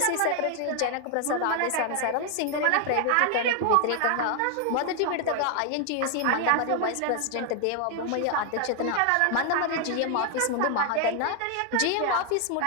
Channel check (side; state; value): both; different; correlation 0.00